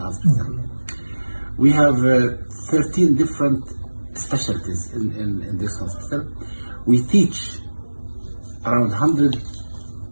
hospital. We have 13 different specialties in this hospital. We teach around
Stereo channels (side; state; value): both; inverted; correlation -1.00